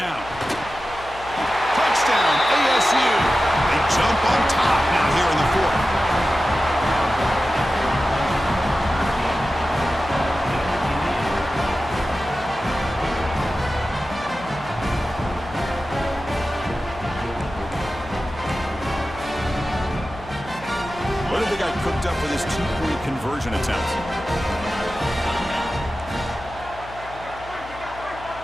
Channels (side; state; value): left; noise; hum, 17 dB below the sound